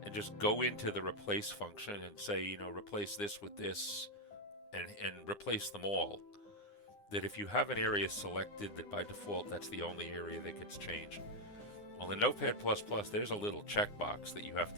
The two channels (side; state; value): right; late; 9.8 ms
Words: and just go into the replace function and say, replace this with this, and replace them all, that if you have an area selected, that by default that's the only area that gets changed. Well, in Notepad++, there's a little checkbox that you have